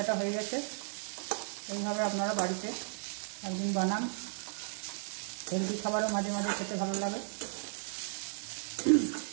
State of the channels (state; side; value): silent; left; 55 dB below the other